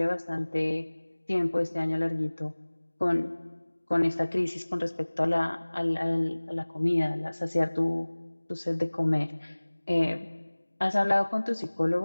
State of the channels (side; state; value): both; inverted; correlation -1.00